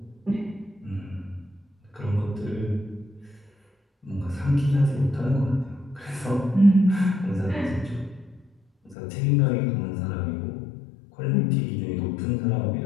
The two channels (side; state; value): right; drops out; at 9.0 s